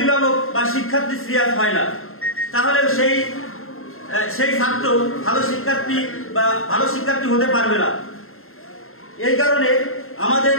বা শিক্ষার্থী সিরিয়াস হয় না, তাহলে সেই ছাত্র ভালো শিক্ষার্থী বা ভালো শিক্ষার্থী হতে পারবে না। এই কারণে আমাদের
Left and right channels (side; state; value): right; late; 0.61 ms